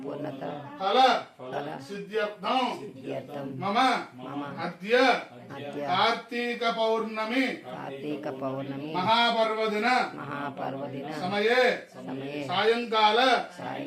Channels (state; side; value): identical; both; correlation 1.00